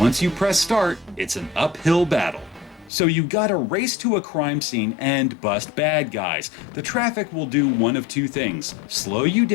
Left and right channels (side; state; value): right; drops out; at 2.9 s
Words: you press start, it's an uphill battle. So you gotta race to a crime scene and bust bad guys. The traffic will do one of two things: slow you